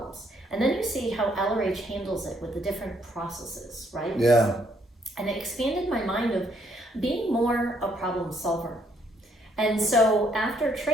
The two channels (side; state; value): both; normal; correlation 0.69